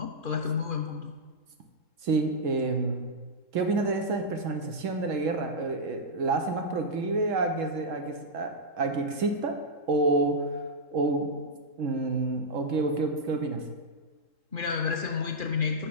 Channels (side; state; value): left; late; 3.7 ms